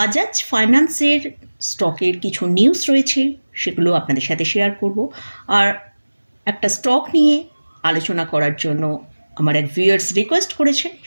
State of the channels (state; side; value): inverted; both; correlation -1.00